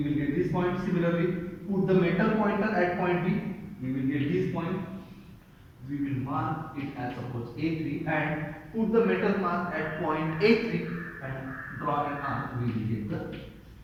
will get this point. Similarly, put the metal pointer at point B, we will get this point. We will mark it as suppose A3 and put the metal mark at point A3 and draw an arc, we will get the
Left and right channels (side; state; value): both; identical; correlation 1.00